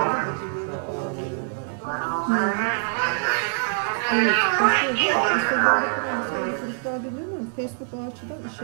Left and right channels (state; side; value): silent; left; 62 dB below the other